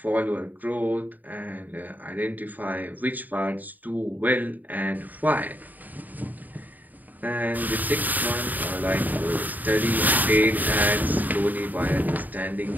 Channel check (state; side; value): late; left; 0.084 ms